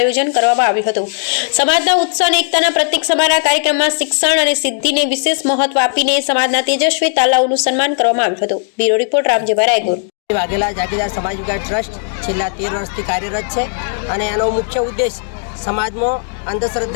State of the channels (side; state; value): right; silent; 66 dB below the other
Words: કરવામાં આવ્યું હતું। સમાજના ઉત્સાહ અને એકતાના પ્રતીક સમાના કાર્યક્રમમાં શિક્ષણ અને સિદ્ધિને વિશેષ મહત્વ આપીને સમાજના તેજસ્વી તાલાઓનું સન્માન કરવામાં આવ્યું હતું। Bureau report Ramjibhai Raygor. વાઘેલા જાગીરદાર સમાજ વિકાસ ટ્રસ્ટ છેલ્લા 13 વર્ષથી કાર્યરત છે અને એનો મુખ્ય ઉદ્દેશ સમાજમાં